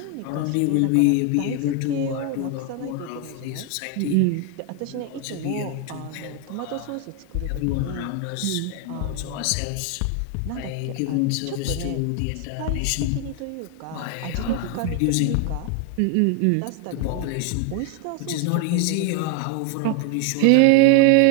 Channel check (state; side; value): different; both; correlation 0.01